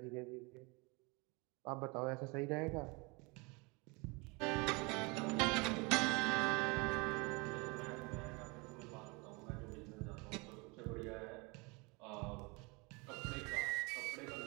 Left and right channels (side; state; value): left; quieter; 28.2 dB